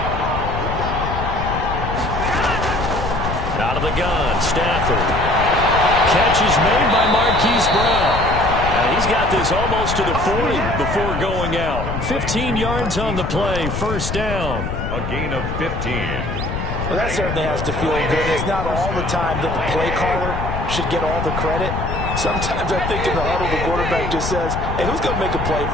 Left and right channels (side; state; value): left; noise; rumble, 4 dB below the sound